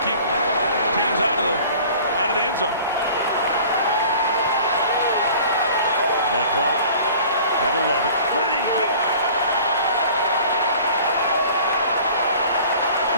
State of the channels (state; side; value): inverted; both; correlation -0.47